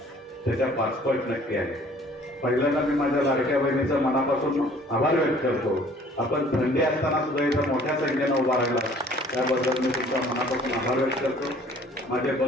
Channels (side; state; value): both; normal; correlation 0.54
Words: त्याच्या 5 पट नक्की आहे. पहिल्यांदा मी माझ्या लाडक्या बहिणीचा मनापासून आभार व्यक्त करतो. आपण थंडी असताना सुद्धा इथं मोठ्या संख्येनं उभा राहिला, त्याबद्दल मी तुमचा मनापासून आभार व्यक्त करतो. माझे